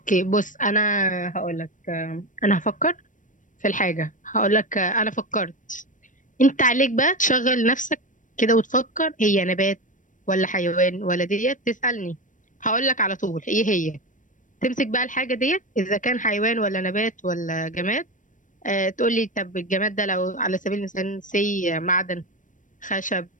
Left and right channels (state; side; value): late; right; 0.37 ms